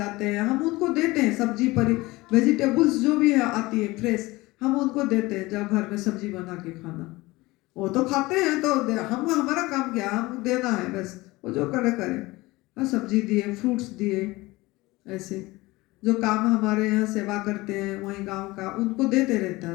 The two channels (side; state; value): right; quieter; 20.8 dB